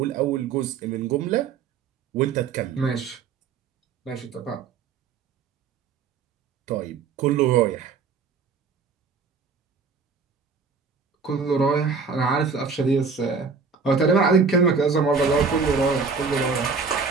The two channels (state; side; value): quieter; left; 5.2 dB